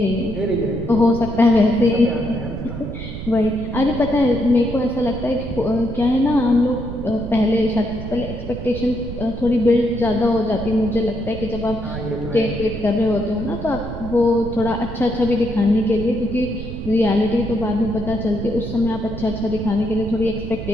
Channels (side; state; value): right; noise; rumble, 9 dB below the sound